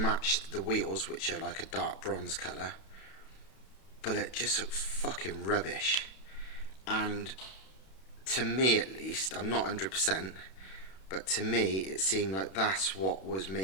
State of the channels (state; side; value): late; right; 31 ms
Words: the wheels, which are like a dark bronze colour, but it just looked fucking rubbish. And to me at least, I'm not 100%, but to me it seemed like that's what was